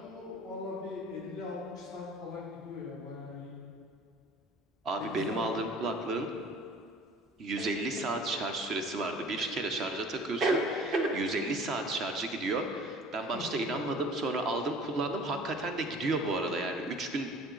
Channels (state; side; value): normal; both; correlation 0.47